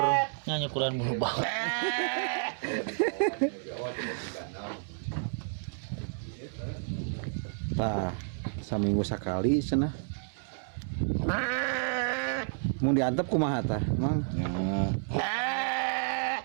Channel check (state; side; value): silent; left; 57 dB below the other